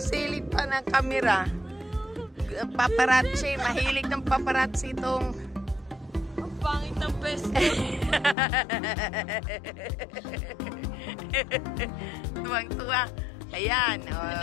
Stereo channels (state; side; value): drops out; right; at 8.3 s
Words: silip pa ng kamera. Paparazzi. Mahilig ng paparazzi itong pangit ng pesto. Tuwang-tuwa. Ayan.